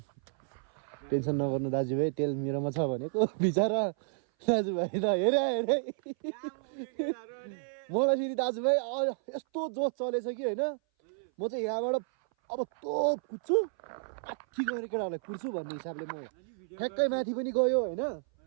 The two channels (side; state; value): left; silent; 57 dB below the other